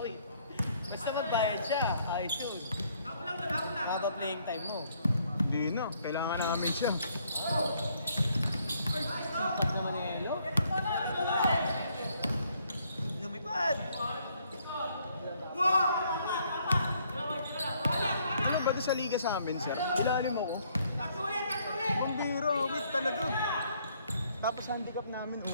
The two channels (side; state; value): both; inverted; correlation -0.68